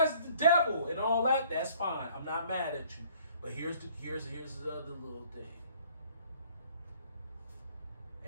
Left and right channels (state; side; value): inverted; both; correlation -0.58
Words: the devil, and all that, that's fine. I'm not mad at you. But here's the other little thing.